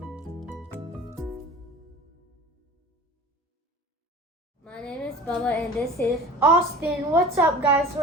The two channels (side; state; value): both; normal; correlation 0.40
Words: My name is Bubba and this is Austin. What's up, guys?